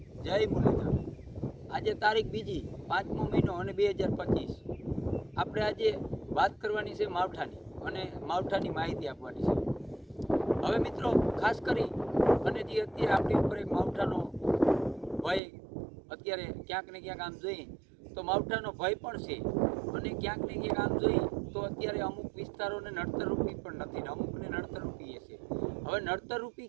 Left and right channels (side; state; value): left; drops out; at 15.4 s